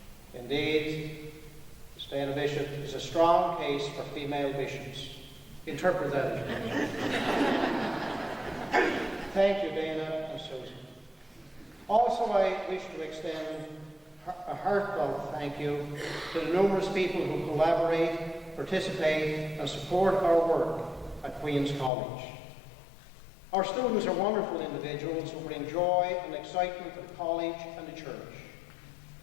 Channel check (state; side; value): drops out; right; at 21.9 s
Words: Indeed, Miss Dana Bishop is a strong case for female bishops. Interpret that as you wish. Thank you, Dana and Susan. Also, I wish to extend a heartfelt thank you to the numerous people who collaborate, participate, and support our work at Queen's College. Our students are wonderful individuals who bring joy and excitement to the college and the church.